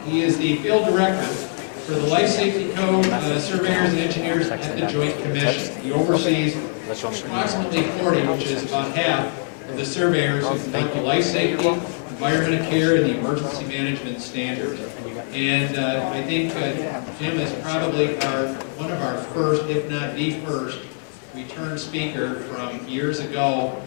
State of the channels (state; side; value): silent; right; 59 dB below the other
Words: He is the field director for the Life Safety Code surveyors and engineers at the Joint Commission. He oversees approximately 40, which is about half of the surveyors who conduct the life safety, environmental care, and the emergency management standards. And I think Jim is probably one of our first, if not the first, return speaker from years ago